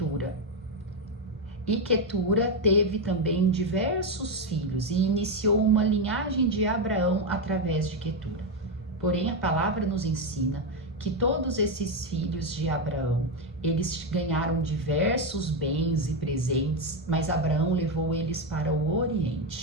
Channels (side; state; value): both; normal; correlation 0.08